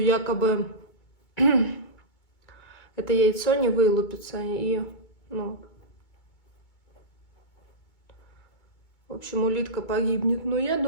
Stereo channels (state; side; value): late; right; 2.2 ms